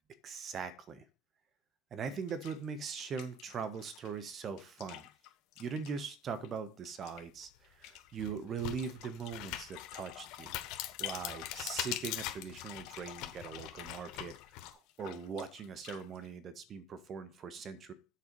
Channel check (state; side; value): normal; both; correlation 0.42